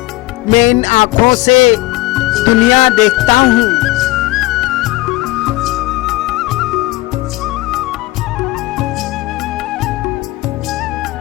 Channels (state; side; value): quieter; right; 19.4 dB